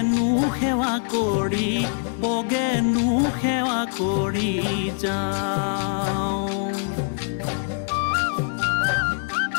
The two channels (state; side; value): silent; right; digital silence